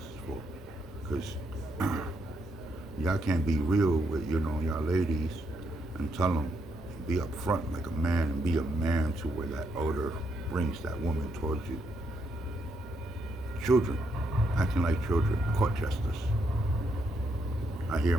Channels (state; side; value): normal; both; correlation 0.78